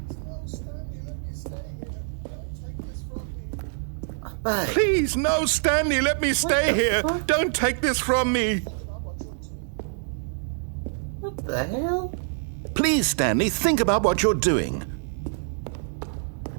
But Please, no, Stanley, let me stay the here. fuck? Don't take this from me. what the hell? Please, Stanley, think about what you're doing.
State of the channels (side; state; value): left; silent; digital silence